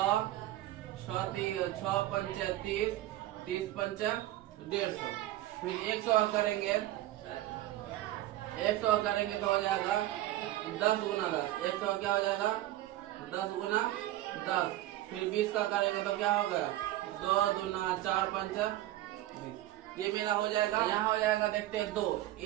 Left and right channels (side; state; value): left; quieter; 15.2 dB